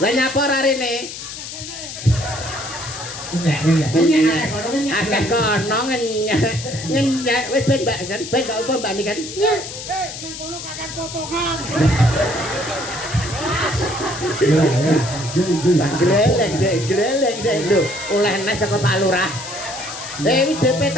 Lah nyapa ora rene? Akeh kono ngenyek wis ben Mbak kan ben gak apa Mbak kan. Nya. Nang kono kakek potongan. Gleleng dek lho oleh nek saka Pak Lurah. WDP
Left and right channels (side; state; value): left; noise; hiss, 10 dB below the sound